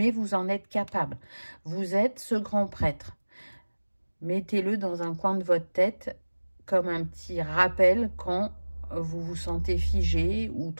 vous en êtes capable. Vous êtes ce grand prêtre. Mettez-le dans un coin de votre tête comme un petit rappel quand vous vous sentez figé ou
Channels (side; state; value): both; inverted; correlation -1.00